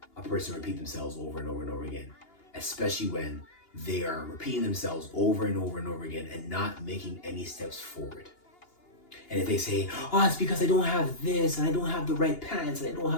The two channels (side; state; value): right; late; 2.8 ms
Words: a person repeat themselves over and over and over again. Especially when they are repeating themselves over and over and over again and not making any steps forward. And if they say, oh, it's because I don't have this, and I don't have the right pants, and I don't